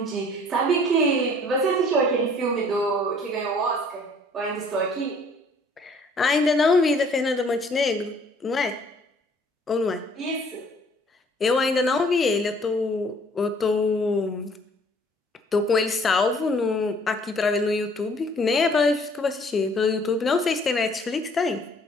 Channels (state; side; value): normal; both; correlation 0.58